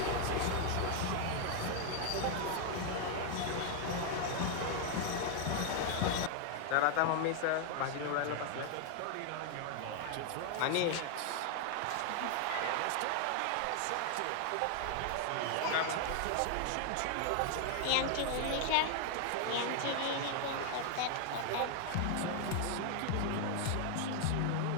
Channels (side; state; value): both; different; correlation 0.00